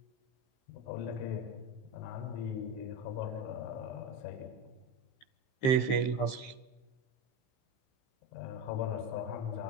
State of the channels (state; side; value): late; right; 15 ms